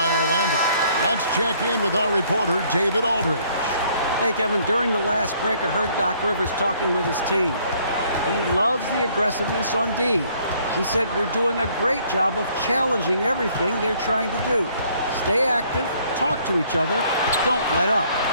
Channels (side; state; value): both; inverted; correlation -0.63